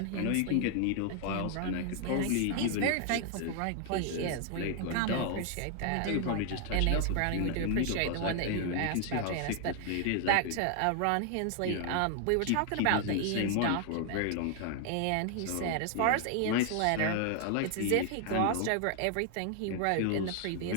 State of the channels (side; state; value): both; different; correlation 0.00